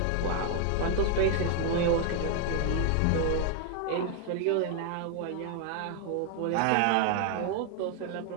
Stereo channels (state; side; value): different; both; correlation 0.00